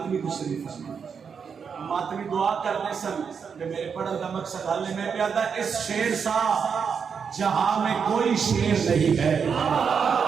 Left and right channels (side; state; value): left; quieter; 6.4 dB